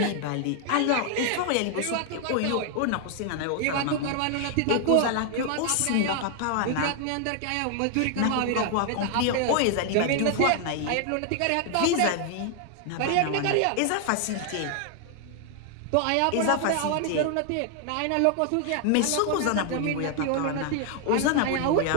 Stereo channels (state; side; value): different; both; correlation 0.00